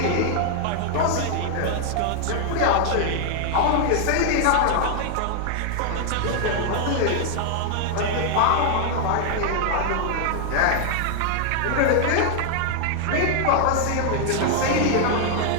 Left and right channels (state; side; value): different; both; correlation 0.00